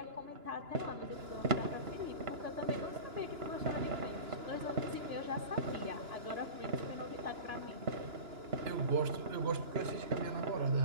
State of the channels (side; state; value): left; late; 2.9 ms